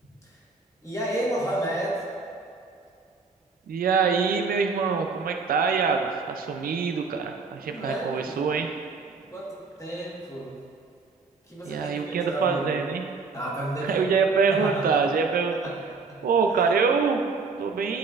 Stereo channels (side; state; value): left; quieter; 4.5 dB